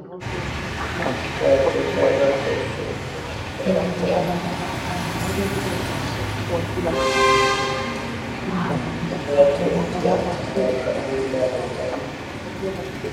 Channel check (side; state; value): both; identical; correlation 1.00